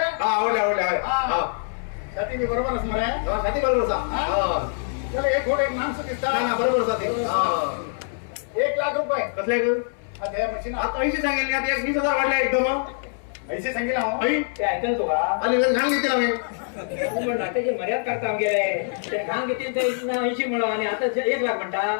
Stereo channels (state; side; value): silent; right; 62 dB below the other